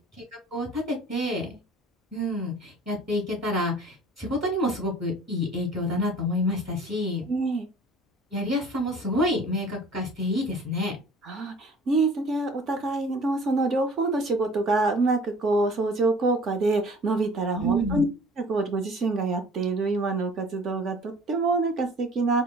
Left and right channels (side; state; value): both; normal; correlation 0.48